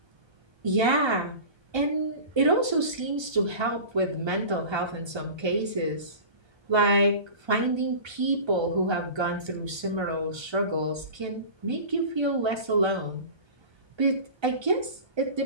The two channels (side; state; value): left; late; 1.3 ms